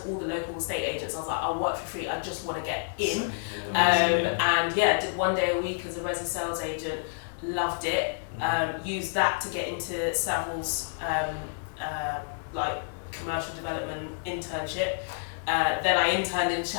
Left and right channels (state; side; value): silent; right; digital silence